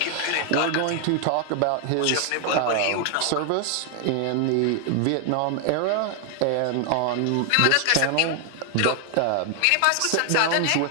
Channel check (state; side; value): different; both; correlation 0.00